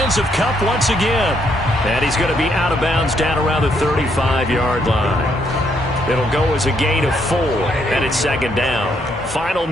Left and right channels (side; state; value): both; normal; correlation 0.73